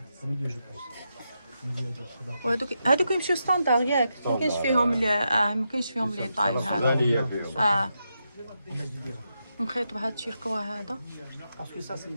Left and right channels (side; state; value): both; inverted; correlation -0.85